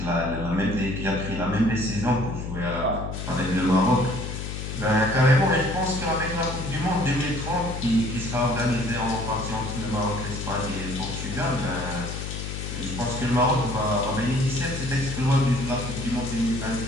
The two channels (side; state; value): left; noise; hum, 6 dB below the sound